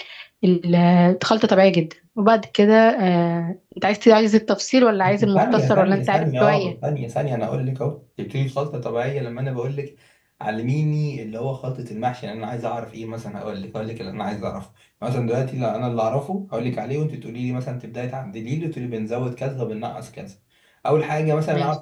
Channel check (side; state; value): both; identical; correlation 1.00